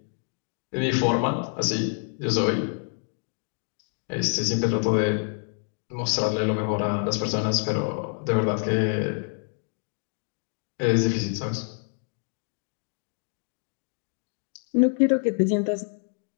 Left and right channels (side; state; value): right; silent; 58 dB below the other